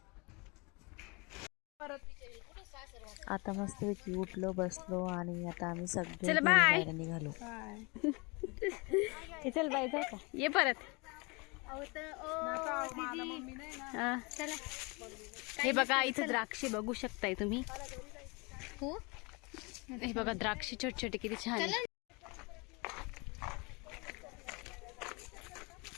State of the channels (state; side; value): quieter; right; 28.3 dB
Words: आता मस्तपैकी उठलो बसलो आणि आता आम्ही सगळे चल बाय बाहेर निघालो. चल बाय जाऊ का, ये परत. हे बघा इथं द्राक्षे बघू शकताय तुम्ही. हे बघा द्राक्षे छोटे छोटे किती छान आहे.